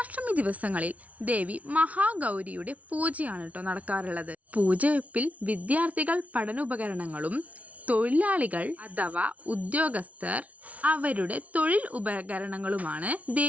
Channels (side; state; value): left; late; 0.068 ms